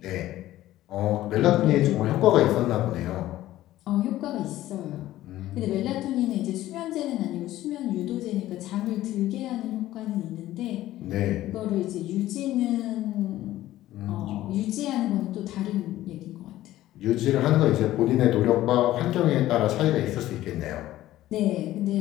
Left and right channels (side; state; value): right; quieter; 14.8 dB